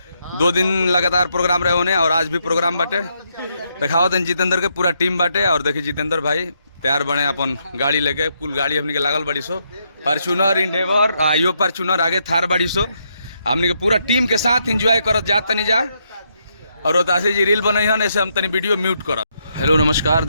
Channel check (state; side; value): inverted; both; correlation -0.78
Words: 2 दिन लगातार प्रोग्राम रहे होने और आज भी प्रोग्राम बाटे। दिखावत हैं जितेंद्र के पूरा टीम बाटे। और देखिए जितेंद्र भाई तैयार बने अपन गाड़ी लेके। कुल गाड़ी हमनी के लागल बड़ी सो, फॉर्च्यूनर, इंडेवर, आइयो फॉर्च्यूनर, आगे थार बड़ी सो। हमनी के पूरा टीम के साथ इंजॉय करत जात तनी जा। और रोतासी जी रील बनई हन, ऐसे हम तनी वीडियो म्यूट करब। हेलो नमस्कार।